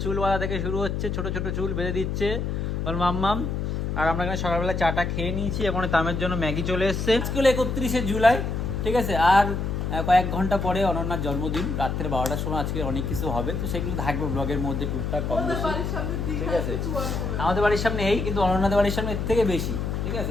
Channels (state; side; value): noise; left; hum, 2 dB below the sound